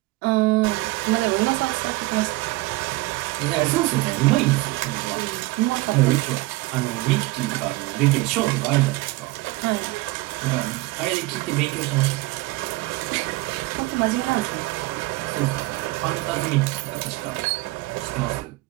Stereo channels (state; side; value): quieter; left; 20.8 dB